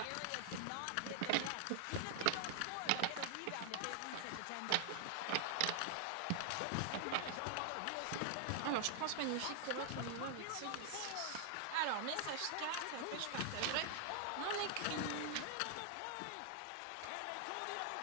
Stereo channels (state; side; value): different; both; correlation 0.00